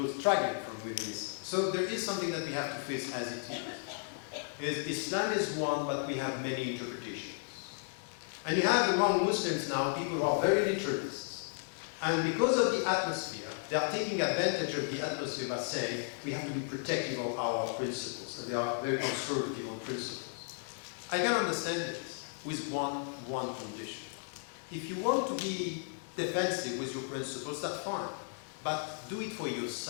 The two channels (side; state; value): right; silent; 55 dB below the other